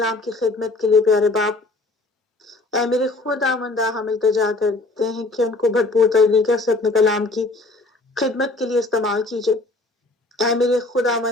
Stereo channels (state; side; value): quieter; right; 3.0 dB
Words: کی خدمت کے لیے پیارے باپ۔ اے میرے خداوندہ ہم التجا کرتے ہیں کہ ان کو بھرپور طریقے سے اپنے کلام کی خدمت کے لیے استعمال کیجیے۔ اے میرے